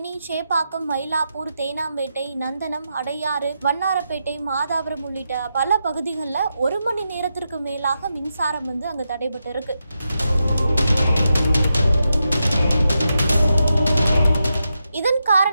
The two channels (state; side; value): inverted; both; correlation -0.86